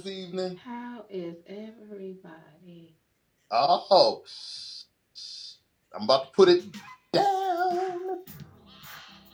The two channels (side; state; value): both; identical; correlation 1.00